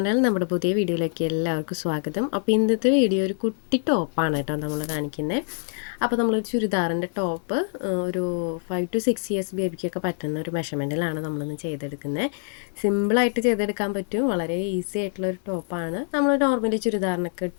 നമ്മുടെ പുതിയ വീഡിയോയിലേക്ക് എല്ലാവർക്കും സ്വാഗതം. അപ്പോൾ ഇന്നത്തെ വീഡിയോ ഒരു കുട്ടി ടോപ്പാണ് കേട്ടോ നമ്മൾ കാണിക്കുന്നത്. അപ്പോൾ നമ്മളൊരു ചുരിദാറിൻ്റെ ടോപ്പ് ഒരു 5 to 6 ഇയേഴ്സ് ബേബിക്കൊക്കെ പറ്റുന്ന ഒരു മെഷർമെൻറ്റിലാണ് നമ്മളിന്ന് ചെയ്തെടുക്കുന്നത്. സിമ്പിളായിട്ട് ചെയ്തെടുക്കാൻ പറ്റും, വളരെ ഈസി ആയിട്ടുള്ളൊരു ടോപ്പാണ്. നമ്മൾ നോർമലി ചുരിദാറിനൊക്കെ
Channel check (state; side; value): silent; right; 62 dB below the other